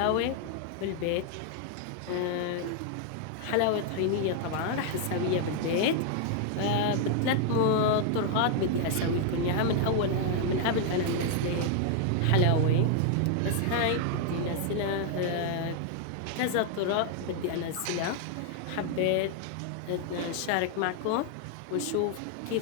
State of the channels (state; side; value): different; both; correlation 0.00